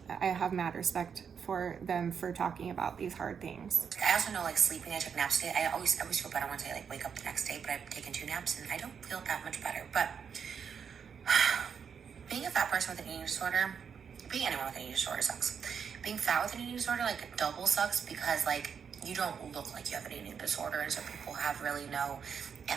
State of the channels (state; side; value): quieter; left; 6.9 dB